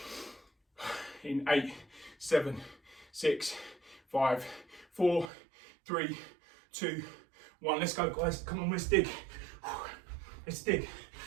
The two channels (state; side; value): drops out; left; at 5.3 s